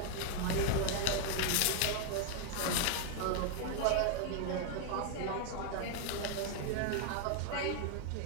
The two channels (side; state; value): both; different; correlation 0.00